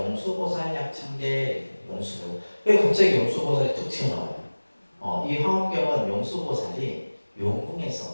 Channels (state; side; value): inverted; both; correlation -1.00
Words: 약창계 용수보. 왜 갑자기 용수보살이 툭 튀어나와요? 이 화엄경은 용수보살이